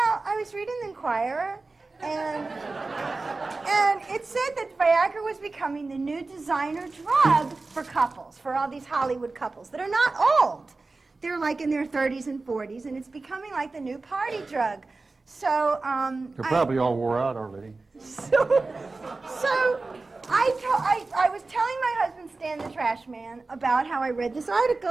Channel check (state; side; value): quieter; left; 3.6 dB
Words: I was reading the Inquirer, and it said that Viagra was becoming the new designer drug for couples, for all these Hollywood couples that are not old. They're like in their 30s and 40s, and it's becoming like the new party drug. So, They're probably all wore out already. So I was telling my husband, Stan the trash man, about how I read this